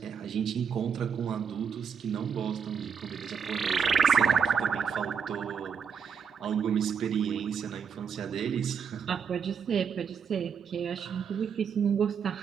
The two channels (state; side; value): quieter; left; 6.6 dB